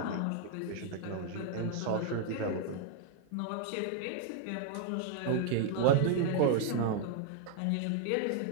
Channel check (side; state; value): both; different; correlation -0.01